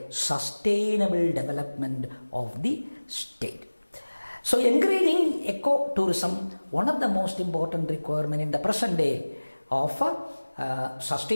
sustainable development of the state. So encouraging eco-tourism, one of the most important requirements in the present day of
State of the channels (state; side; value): inverted; both; correlation -1.00